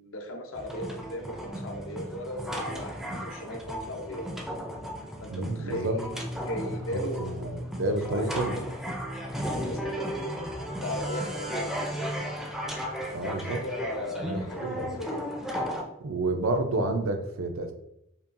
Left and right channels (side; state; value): both; normal; correlation 0.29